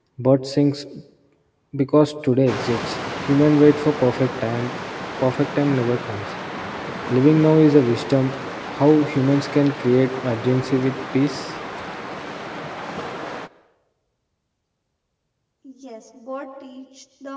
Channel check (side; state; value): both; identical; correlation 1.00